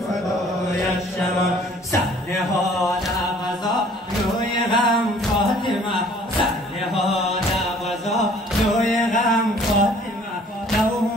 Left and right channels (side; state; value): both; normal; correlation 0.55